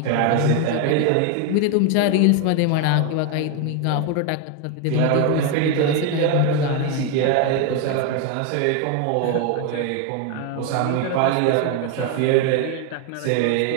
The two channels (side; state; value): both; different; correlation 0.01